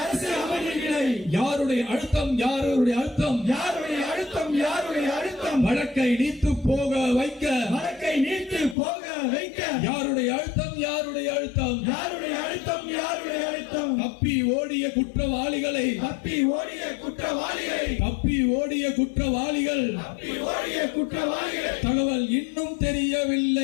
அரசு அமைதி நிலை. யாருடைய அழுத்தம் யாருடைய அழுத்தம் யாருடைய அழுத்தம் யாருடைய அழுத்தம். வழக்கை நீத்து போக வைக்க, வழக்கை நீத்து போக வைக்க. யாருடைய அழுத்தம் யாருடைய அழுத்தம் யாருடைய அழுத்தம் யாருடைய அழுத்தம். தப்பி ஓடிய குற்றவாளிகளை, தப்பி ஓடிய குற்றவாளிகளை, தப்பி ஓடிய குற்றவாளிகள், தப்பி ஓடிய குற்றவாளிகள். தகவல் இன்னும்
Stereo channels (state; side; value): drops out; right; at 8.8 s